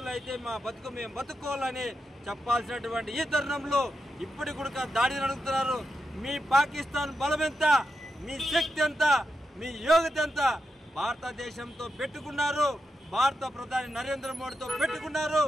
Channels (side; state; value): both; normal; correlation 0.87